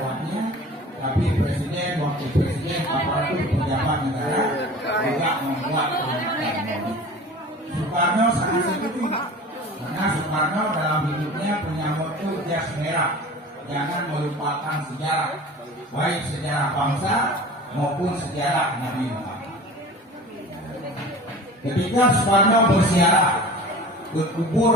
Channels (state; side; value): normal; both; correlation 0.39